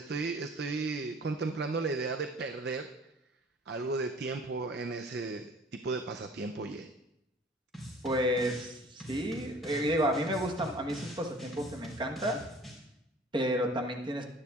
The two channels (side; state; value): both; normal; correlation 0.49